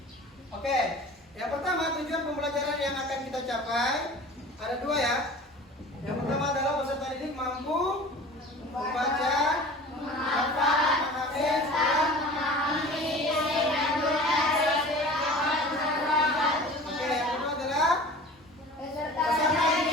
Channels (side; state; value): both; normal; correlation 0.41